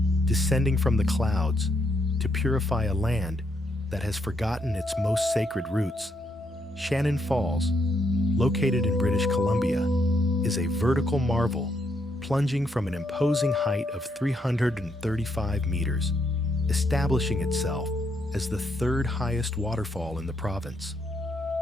descending from the clouds to purify a land that has forgotten its most sacred roots. Shannon Falls, located in British Columbia, is a vertical marvel, plunging from an imposing height of 335 meters, establishing itself as the third highest waterfall in the province.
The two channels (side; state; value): both; normal; correlation 0.76